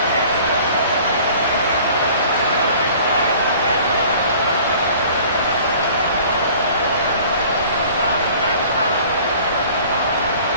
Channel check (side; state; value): both; inverted; correlation -0.49